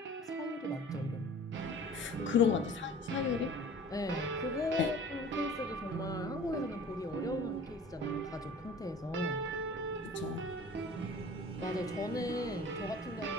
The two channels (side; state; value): both; normal; correlation 0.45